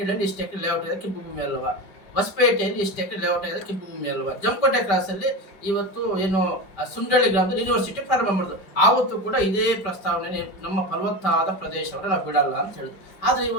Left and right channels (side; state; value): right; late; 5.2 ms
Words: ಇಷ್ಟು ಎಕರೆ ಲೇಔಟ್ ಆಗಿದೆ, ಕೆಂಪು ಭೂಮಿ ಅಲ್ವಾ? ಹೊಸಪೇಟೆಯಲ್ಲಿ ಇಷ್ಟು ಎಕರೆ ಲೇಔಟ್ ಆಗಿದೆ, ಕೆಂಪು ಭೂಮಿ ಅಲ್ವಾ? ಜಮಕೋಟೆ ಕ್ರಾಸಲ್ಲಿ ಇವತ್ತು ಏನು ಸುಂಡಳ್ಳಿ ಗ್ರಾಮದಲ್ಲಿ ಯೂನಿವರ್ಸಿಟಿ ಪ್ರಾರಂಭ ಮಾಡಿದ್ರು, ಆವತ್ತು ಕೂಡ ಇದೇ ಪ್ರಸ್ತಾವನೆ, ನಮ್ಮ ಫಲವತ್ತಾದ ಪ್ರದೇಶವನ್ನು ನಾವು ಬಿಡಲ್ಲ ಅಂತ ಹೇಳಿದ್ರು. ಆದ್ರೆ